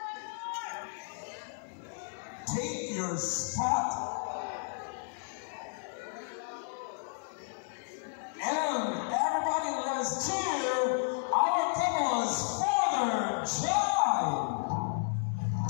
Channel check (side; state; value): right; silent; 56 dB below the other